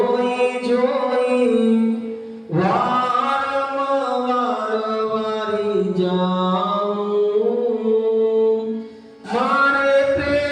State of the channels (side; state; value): both; identical; correlation 1.00